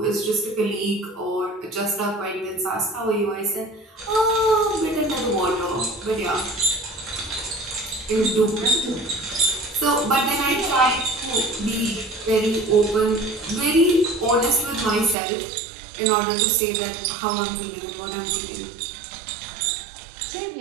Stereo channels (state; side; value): drops out; left; at 15.2 s